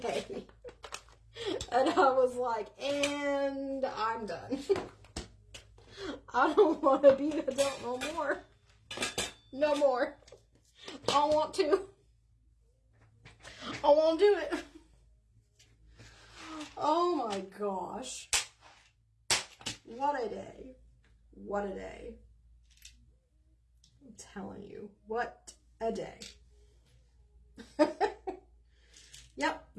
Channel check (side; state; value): both; identical; correlation 1.00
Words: And I was like, and I'm done. I don't want to be an adult no more. No more. I don't want to. I won't do it. Oh my gosh. What a day. What a day. I'm telling you, what a day. Yep,